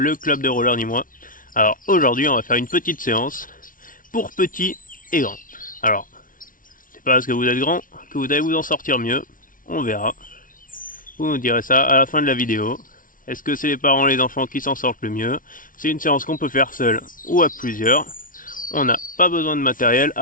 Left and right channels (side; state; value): right; late; 0.39 ms